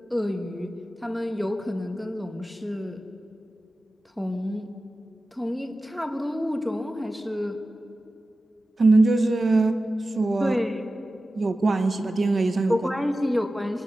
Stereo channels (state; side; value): normal; both; correlation 0.95